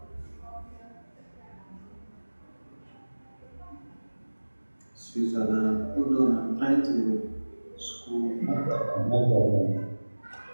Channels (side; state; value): both; inverted; correlation -1.00